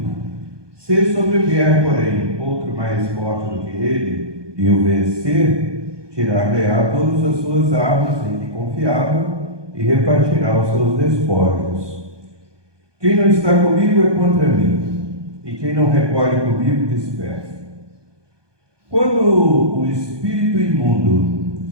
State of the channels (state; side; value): late; left; 1.2 ms